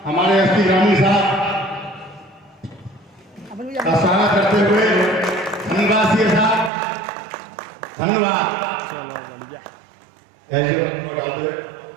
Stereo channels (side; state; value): left; drops out; at 6.7 s